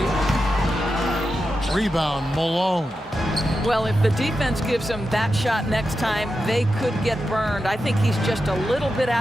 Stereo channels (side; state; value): both; normal; correlation 0.89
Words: Rebound, Malone. Well, if the defense gives him that shot next time, they could get burned. I think he's just a little bit